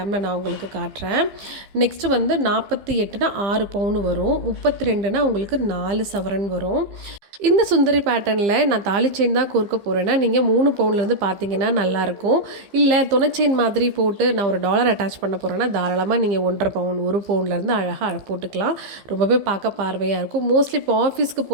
நான் உங்களுக்கு காட்டுறேன். நெக்ஸ்ட்டு வந்து 48னா 6 பவுன் வரும். 32னா உங்களுக்கு 4 சவரன் வரும். இந்த சுந்தரி பேட்டர்னில் நான் தாலி செயின் தான் கோர்க்க போகிறேன்னா நீங்கள் 3 பவுன்லேருந்து பார்த்தீங்கன்னா நல்லாயிருக்கும். இல்லை துணை செயின் மாதிரி போட்டு நான் ஒரு டாலர் அட்டாச் பண்ண போகிறேன்னா தாராளமாக நீங்கள் 1.5 பவுன் 1 பவுன்லேருந்து அழகாக போட்டுக்கலாம். ரொம்பவே பார்க்க பார்வையாக இருக்கும். மோஸ்ட்லி இப்போ ஆஃபீஸ்க்கு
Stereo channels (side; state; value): left; late; 15 ms